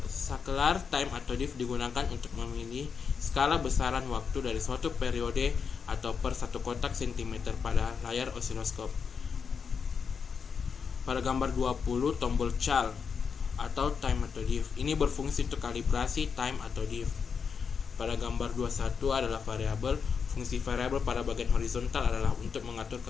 time atau diff digunakan untuk memilih skala besaran waktu dari suatu periode atau per satu kotak cm pada layar osiloskop. Pada gambar 20, tombol cal atau time atau diff ini berfungsi untuk kalibrasi time atau diff. Pada gambar 21 adalah variabel. Fungsi variabel pada bagian horizontal adalah untuk mengatur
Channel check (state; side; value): quieter; right; 6.1 dB